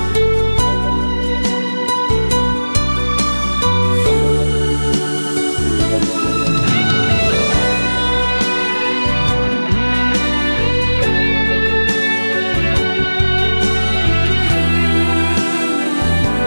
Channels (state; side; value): inverted; both; correlation -1.00